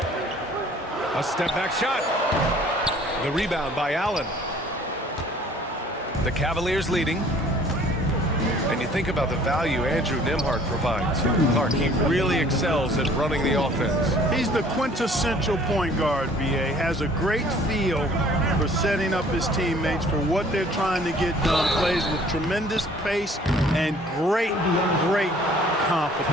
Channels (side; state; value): both; normal; correlation 0.54